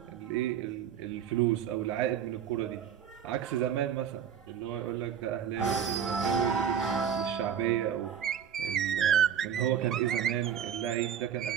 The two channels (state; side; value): quieter; left; 8.7 dB